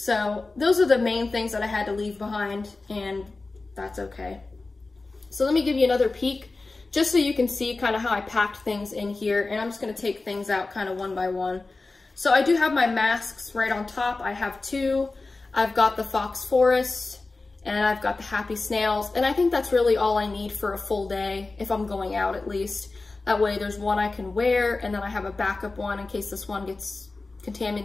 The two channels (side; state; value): right; quieter; 3.5 dB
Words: those are the main things that I had to leave behind, and that's okay. So let me give you another peek, just so you can see kind of how I packed things in here, and I'm just gonna take things out kind of one by one. So I do have my masks right on top. I have two. I've got the Fox Forest, and I've got the Happy Snails, and I think that's really all I need for a full day, if I'm going out at least. That way there's one I can wear, and then I have a backup one in case this one gets